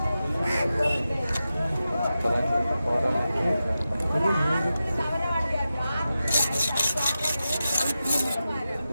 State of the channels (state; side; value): inverted; both; correlation -0.91